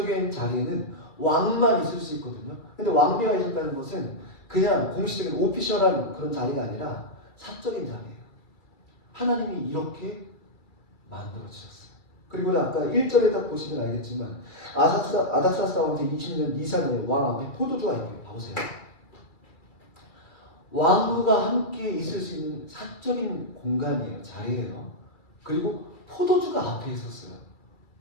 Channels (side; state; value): right; late; 2.3 ms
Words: 자리에는 왕만 있을 수 있거든요. 근데 왕비가 있었다는 것은 그냥 공식적인 오피셜한 그런 자리가 아니라 사적인 자리예요. 하나님이 이렇게 만들어주셨어요. 그리고 아까 1절에 딱 보시면 알겠지만 아닥사스다 왕 제20년 니산에 왕 앞에 포도주가 있네요. 봐보세요. 왕후가 함께 있을 수 있는 사적인 공간이에요. 자리예요. 그리고 포도주가 앞에 있었어요.